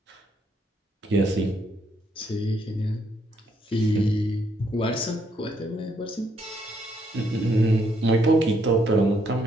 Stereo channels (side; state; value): both; normal; correlation 0.73